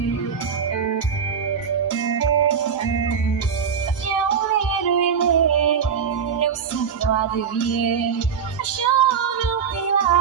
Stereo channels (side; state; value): left; quieter; 6.9 dB